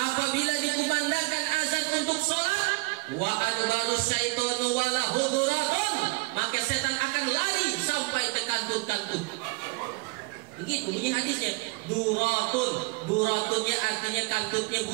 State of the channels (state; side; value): quieter; left; 26.0 dB